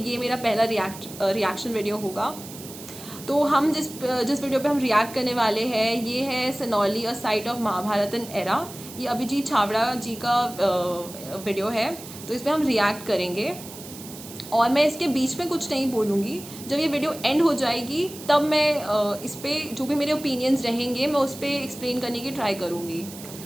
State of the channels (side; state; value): right; noise; hiss, 14 dB below the sound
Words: मेरा पहला रिएक्शन वीडियो होगा। तो हम जिस वीडियो पे हम रिएक्ट करने वाले हैं ये है सनौली अ साइट ऑफ महाभारतन एरा। ये अभिजीत छाबड़ा जी का वीडियो है, तो इस पर हम रिएक्ट करेंगे और मैं इसके बीच में कुछ नहीं बोलूँगी। जब ये वीडियो एंड हो जाएगी तब मैं इस पर जो भी मेरे ओपिनियंस रहेंगे मैं उस पर एक्सप्लेन करने की ट्राई करूँगी।